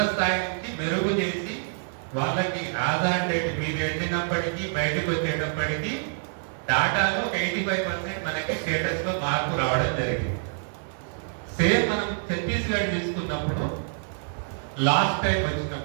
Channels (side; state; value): left; silent; digital silence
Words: స్థాయి నుంచి మెరుగు చేసి వాళ్ళకి ఆధార్ డేట్ మీరు వెళ్ళినప్పటికీ బయటకు వచ్చేటప్పటికీ డాటాలో ఒక 85% మనకి స్టేటస్ లో మార్పు రావడం జరిగింది. సేమ్ మనం ఛత్తీస్గఢ్ తీసుకున్నప్పుడు లాస్ట్ టైం